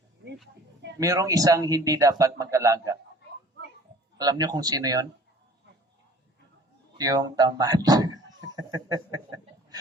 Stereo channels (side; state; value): both; normal; correlation 0.49